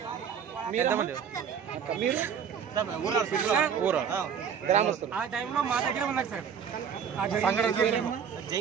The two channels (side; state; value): left; quieter; 7.5 dB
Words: ఊరు ఆ టైంలో మా దగ్గర ఉన్నారు సార్. అంగడి